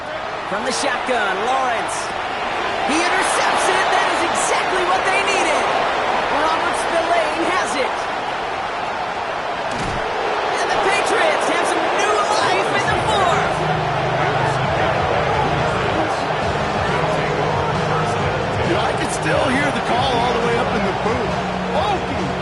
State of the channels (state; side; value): identical; both; correlation 1.00